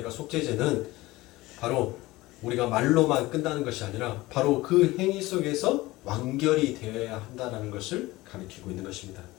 속죄제는 바로 우리가 말로만 끝나는 것이 아니라 바로 그 행위 속에서 완결이 되어야 한다는 것을 가리키고 있는 것입니다.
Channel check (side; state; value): right; quieter; 19.3 dB